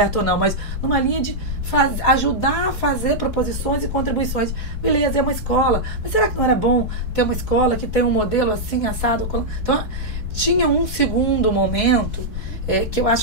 ou não, mas numa linha de ajudar a fazer proposições e contribuições. Beleza, é uma escola, mas será que não era bom ter uma escola que tem um modelo assim, assado? Então, tinha um segundo momento que eu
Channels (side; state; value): both; normal; correlation -0.05